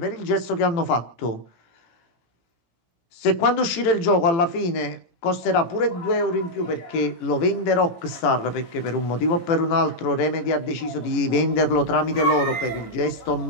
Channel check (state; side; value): late; right; 18 ms